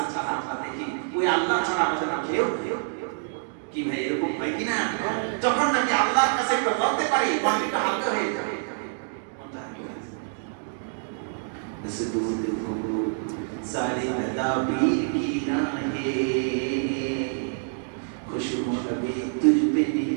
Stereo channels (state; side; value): silent; left; digital silence